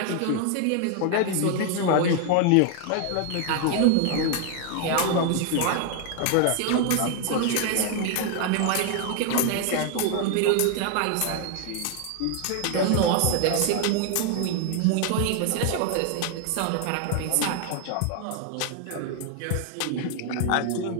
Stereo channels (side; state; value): both; different; correlation 0.01